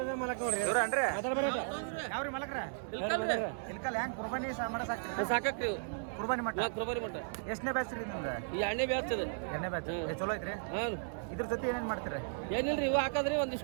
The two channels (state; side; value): silent; left; digital silence